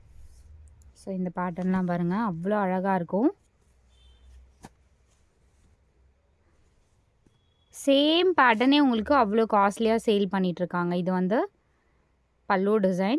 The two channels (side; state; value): both; identical; correlation 1.00